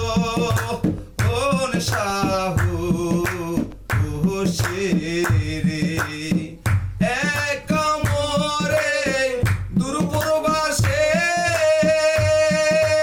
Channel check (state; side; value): identical; both; correlation 1.00